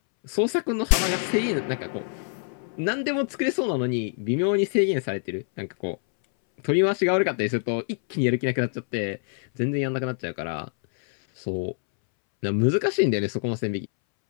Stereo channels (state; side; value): silent; right; 61 dB below the other